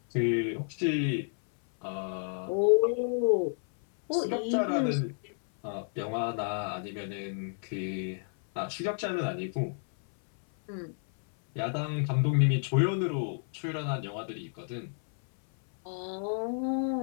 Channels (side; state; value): right; silent; 57 dB below the other